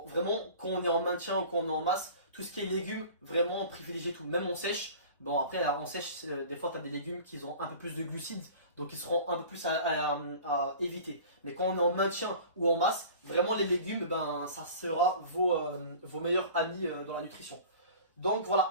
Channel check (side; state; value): both; inverted; correlation -0.41